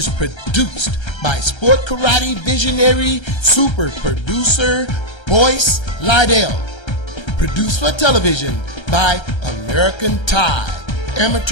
produced by Sport Karate visionary super producer Boyce Lydell. Produced for television by American Tide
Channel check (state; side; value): late; right; 1.3 ms